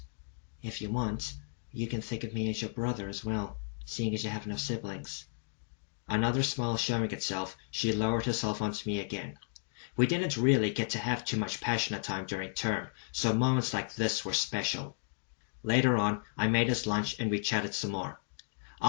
If you want, you can think of me as your brother as well, seeing as you have no siblings. Another smile showing itself, she lowered herself onto me again. We didn't really get to have too much passionate time during term, so moments like this were special. Later on, I made us lunch and we chatted some more.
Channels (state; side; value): silent; right; digital silence